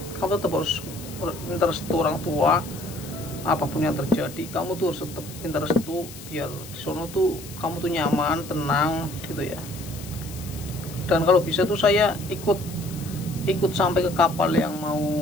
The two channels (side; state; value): left; noise; hiss, 15 dB below the sound